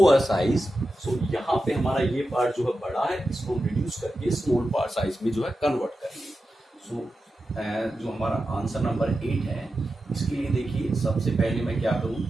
size. So यहाँ पे हमारा ये पार्ट जो है बड़ा है, इसको हम रिड्यूस करके स्मॉल पार्ट साइज में जो है कन्वर्ट करेंगे. सो जो हमारा आंसर नंबर 8 है, इसके लिए देखिए सबसे पहले मैं क्या करूं,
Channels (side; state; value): both; normal; correlation 0.91